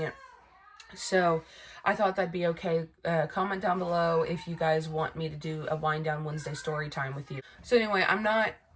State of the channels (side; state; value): both; identical; correlation 1.00